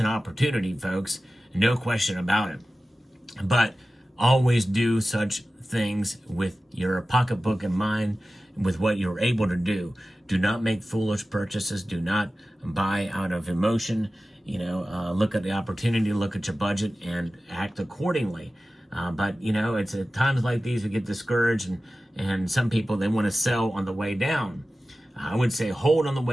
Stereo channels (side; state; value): both; normal; correlation 0.95